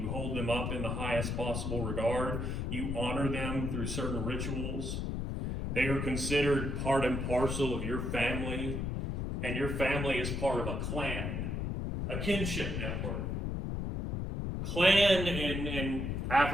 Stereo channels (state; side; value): noise; left; rumble, 2 dB below the sound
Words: you hold them up in the highest possible regard. You honor them through certain rituals. They are considered part and parcel of your family, and your family is part of a clan, a kinship network. Clan in